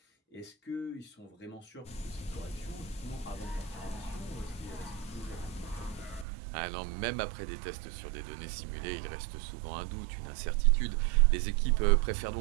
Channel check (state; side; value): drops out; left; at 6.2 s